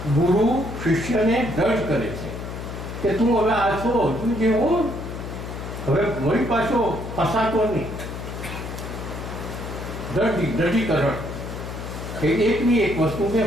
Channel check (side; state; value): left; noise; hum, 8 dB below the sound